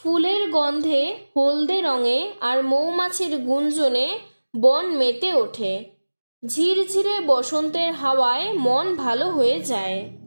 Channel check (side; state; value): both; inverted; correlation -1.00